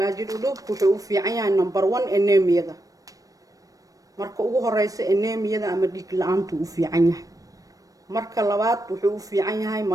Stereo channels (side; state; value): left; late; 0.17 ms